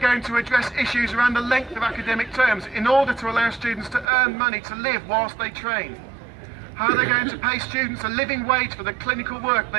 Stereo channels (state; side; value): drops out; left; at 4.0 s